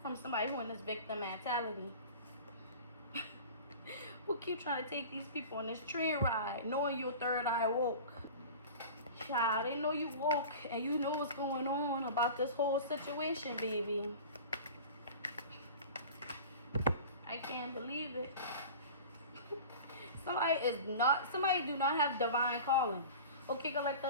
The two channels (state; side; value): inverted; both; correlation -0.37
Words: from somebody who in this victim mentality. Who keep trying to take these people on this train ride, knowing your third eye woke. Child, they know you woke and you know what's going on about this whole situation, baby. I can't believe it. Somebody do not have divine calling. Okay,